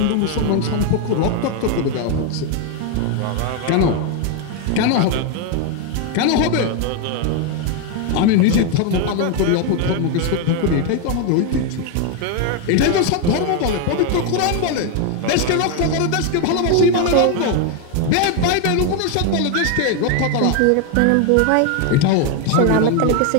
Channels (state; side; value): different; both; correlation 0.01